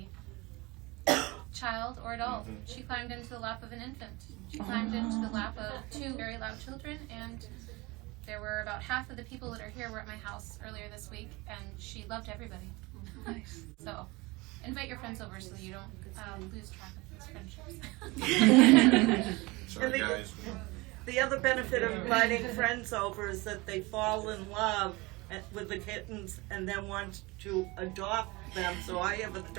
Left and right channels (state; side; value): quieter; left; 23.6 dB